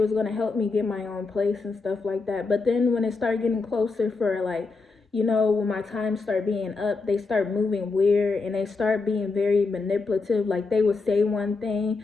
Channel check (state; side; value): quieter; right; 4.1 dB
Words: gonna help me get my own place and stuff like that. But then when it started getting closer for like, when my time start being up, they start moving weird and they start being very manipulative. Like they would say one thing